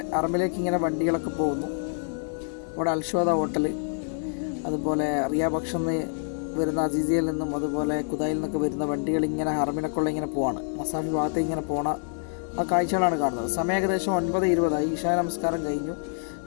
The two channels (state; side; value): silent; right; digital silence